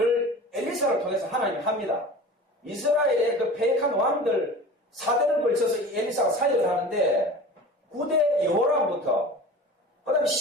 엘리사를 통해서 하나님이 합니다. 이스라엘의 그 패역한 왕들 4대를 걸쳐서 이 엘리사가 사역을 하는데 9대 여호람부터 그 다음에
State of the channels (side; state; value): both; normal; correlation 0.37